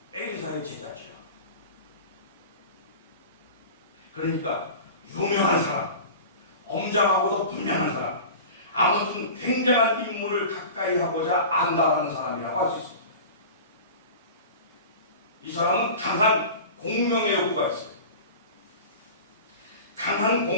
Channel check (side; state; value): both; inverted; correlation -0.35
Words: 엘리사의 제자죠. 그러니까 유명한 사람, 엄장하고도 분명한 사람, 아무튼 굉장한 인물을 가까이 하고자 안다라는 사람이라고 할 수 있습니다. 이 사람은 강한 공명의 욕구가 있어요. 강한